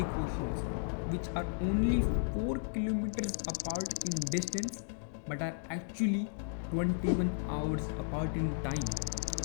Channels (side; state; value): right; silent; digital silence